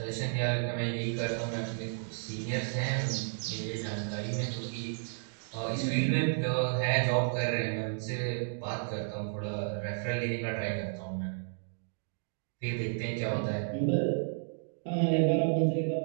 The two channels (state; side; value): silent; left; digital silence